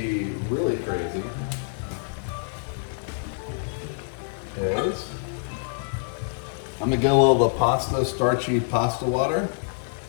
really crazy is I'm going to get a little of the starchy pasta water.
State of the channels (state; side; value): silent; right; digital silence